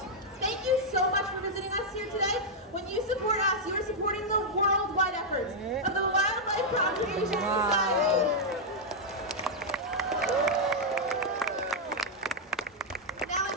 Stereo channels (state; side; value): normal; both; correlation -0.04